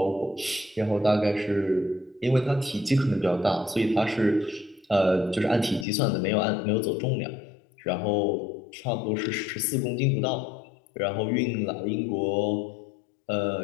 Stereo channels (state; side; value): drops out; right; at 5.9 s